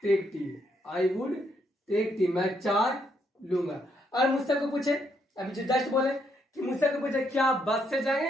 टेक टी, मैं चाय लूंगा। और मुझसे को पूछे, अभी जो जस्ट बोले कि मुझसे कोई पूछे क्या आप बस से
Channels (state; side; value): normal; both; correlation 0.75